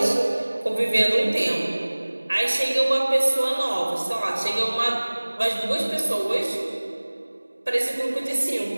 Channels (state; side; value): inverted; both; correlation -1.00